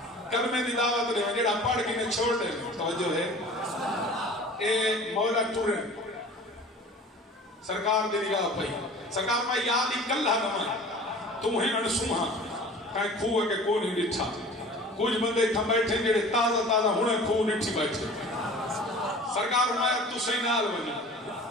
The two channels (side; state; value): both; normal; correlation 0.42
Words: کلمے دی دعوت دے جڑا پڑھ کے نے چھوڑ دے توجہ ہے اے مولا ٹورے سرکار دے نگاہ پئی سرکار میں یاد ہی کلہ نمائے تمہیں انسوہاں کہیں کھوہ کے کو نہیں ڈٹھا کچھ بندے تھا بیٹھے جڑے تازہ ہونے کھوہ ڈٹھی بیٹھے سرکار مایا تو صحیح نال بنی